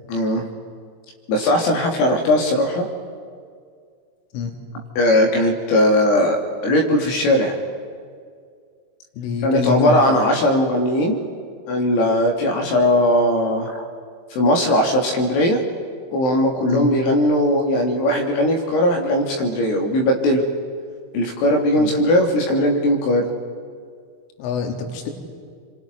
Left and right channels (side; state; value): right; late; 23 ms